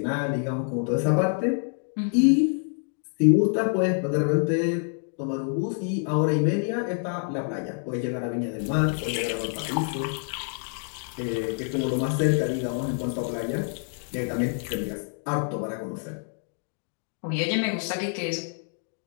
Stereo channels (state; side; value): silent; right; 60 dB below the other